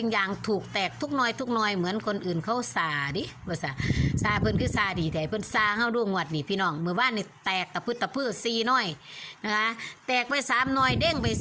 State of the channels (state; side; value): identical; both; correlation 1.00